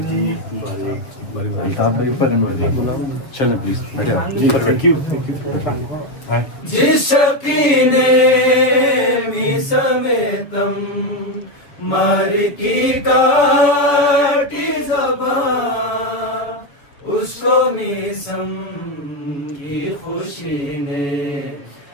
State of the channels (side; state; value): right; late; 6.8 ms